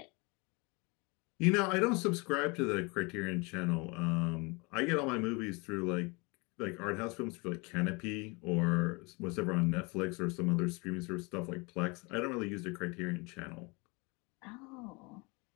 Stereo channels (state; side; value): quieter; right; 28.4 dB